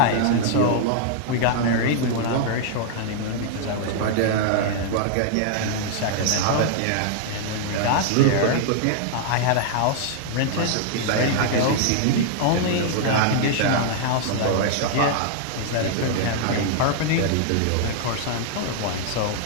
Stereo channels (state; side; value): different; both; correlation -0.01